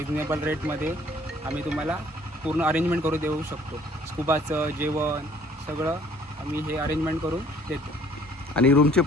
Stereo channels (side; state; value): both; normal; correlation 0.57